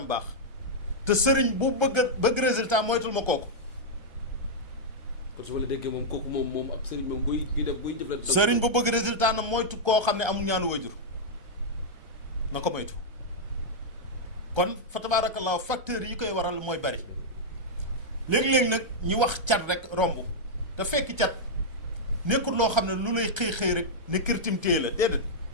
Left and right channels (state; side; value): late; left; 1.3 ms